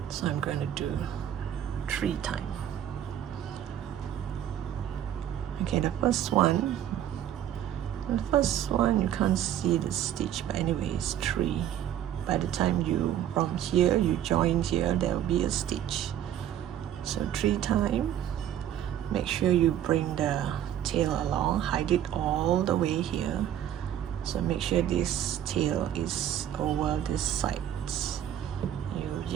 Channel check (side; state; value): left; quieter; 10.9 dB